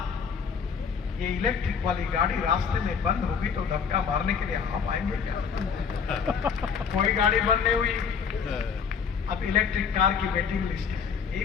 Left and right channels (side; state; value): right; quieter; 6.4 dB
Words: ये इलेक्ट्रिक वाली गाड़ी रास्ते में बंद होगी तो धक्का मारने के लिए आप आएंगे क्या? कोई गाड़ी बंद नहीं हुई। अब इलेक्ट्रिक कार की वेटिंग लिस्ट है। यही